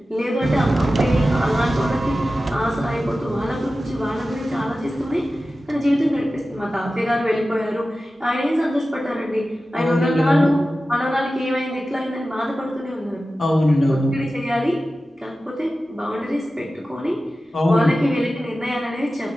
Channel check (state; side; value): normal; both; correlation 0.94